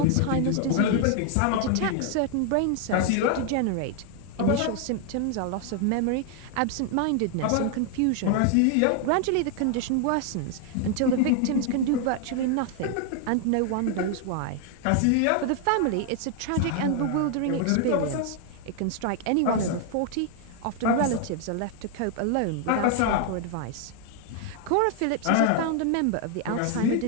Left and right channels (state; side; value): different; both; correlation 0.00